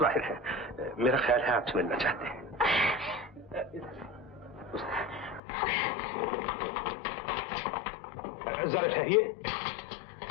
बाहर है, मेरा ख्याल है आपसे मिलना चाहते हैं। जरा ठहरिए।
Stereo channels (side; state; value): right; drops out; at 5.4 s